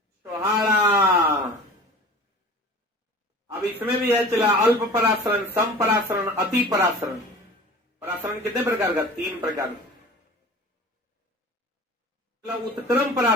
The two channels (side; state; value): both; normal; correlation 0.40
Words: छोहाड़ा। अब इसमें भी है चला अल्प परासरण, सम परासरण, अति परासरण। परासरण कितने प्रकार का? 3 प्रकार। उत्क्रम